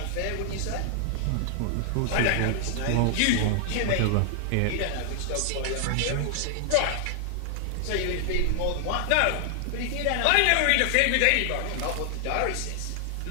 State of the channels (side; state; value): both; different; correlation 0.00